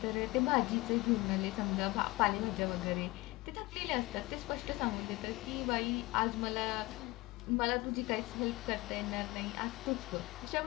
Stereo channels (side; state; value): right; quieter; 21.5 dB